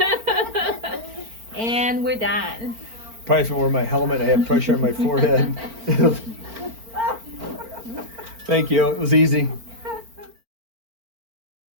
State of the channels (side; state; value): left; late; 4.4 ms